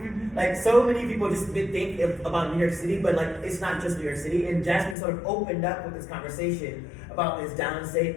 Like, so many people just think about New York City, but like, it's not just New York City. And Jasmine sort of opened up with this conversation about this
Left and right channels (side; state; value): right; drops out; at 5.0 s